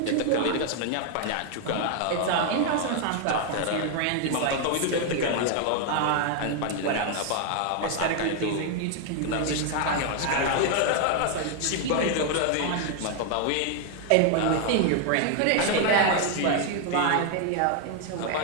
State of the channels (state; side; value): different; both; correlation 0.00